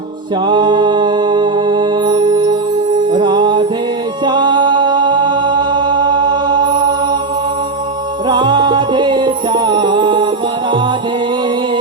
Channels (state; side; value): quieter; left; 3.7 dB